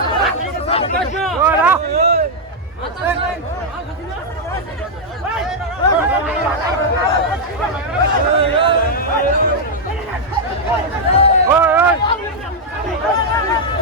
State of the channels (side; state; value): both; normal; correlation -0.03